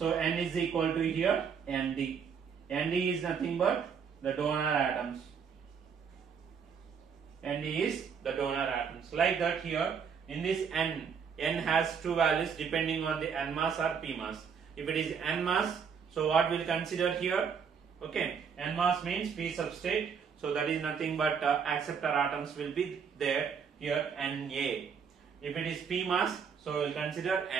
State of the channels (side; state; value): left; quieter; 6.7 dB